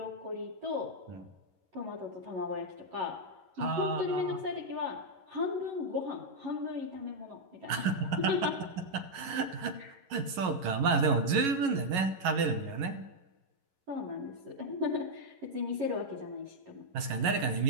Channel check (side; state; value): left; late; 11 ms